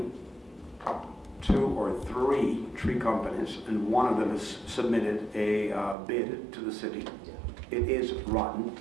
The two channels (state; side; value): drops out; left; at 6.0 s